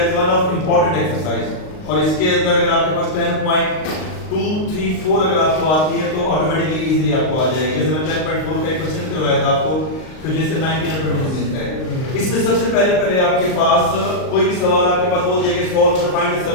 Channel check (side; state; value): right; late; 38 ms